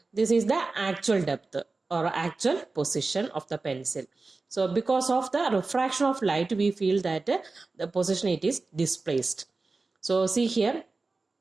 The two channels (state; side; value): quieter; left; 3.7 dB